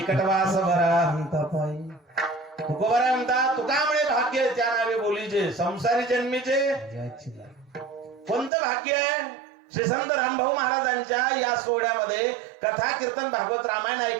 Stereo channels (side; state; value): left; drops out; at 8.5 s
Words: बरा म्हणता पायी. तुकोबाराय म्हणतात, तुकामुळे भाग्य त्या नावे बोलीचे, संसारी जन्मीचे कोणतं भाग्य आहे. श्री संत रामभाऊ महाराजांच्या या सोहळ्यामध्ये कथा कीर्तन भागवत रामायण